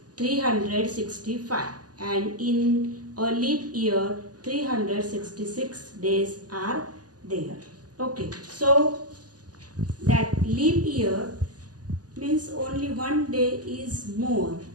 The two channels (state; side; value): late; left; 0.68 ms